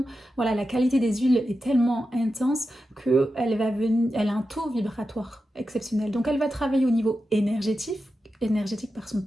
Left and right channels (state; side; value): normal; both; correlation 0.90